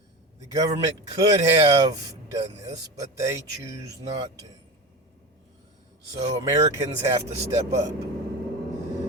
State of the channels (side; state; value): both; normal; correlation 0.26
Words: The government could have done this, but they choose not to. So Americans have to step up.